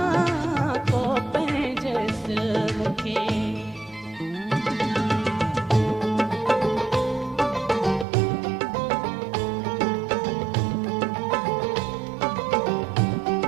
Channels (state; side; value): drops out; left; at 8.1 s